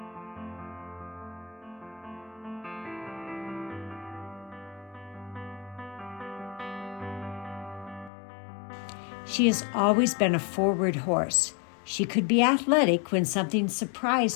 She has always been a forward horse. She could be athletic when something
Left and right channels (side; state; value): right; drops out; at 8.1 s